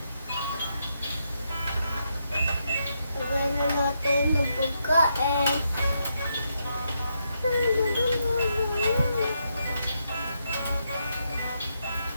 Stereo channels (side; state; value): both; inverted; correlation -0.81